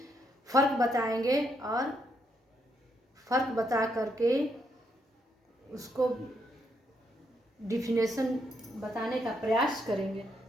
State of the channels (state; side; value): normal; both; correlation 0.77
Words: फ़र्क बताएंगे और फ़र्क बता करके उसको डिफिनेशन बताने का प्रयास करेंगे।